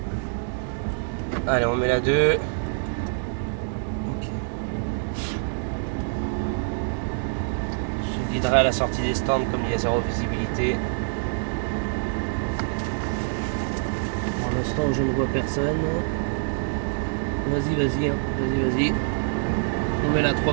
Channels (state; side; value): silent; left; digital silence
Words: Allez, on met la 2. Je guiderai à la sortie des stands comme il y a zéro visibilité. Pour l'instant, je ne vois personne. Vas-y, vas-y, hein. Vas-y. On met la 3